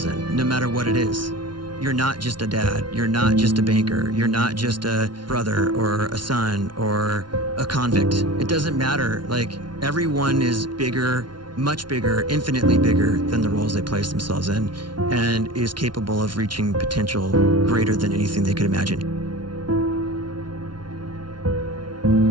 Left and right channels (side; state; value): left; late; 0.71 ms